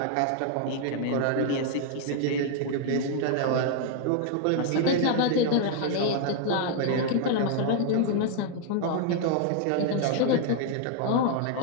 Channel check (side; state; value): both; different; correlation 0.00